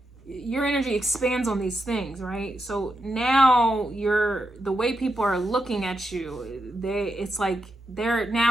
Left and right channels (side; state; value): both; normal; correlation 0.85